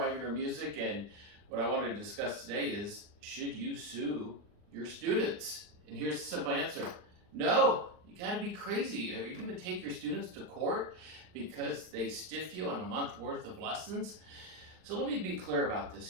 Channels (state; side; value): late; left; 39 ms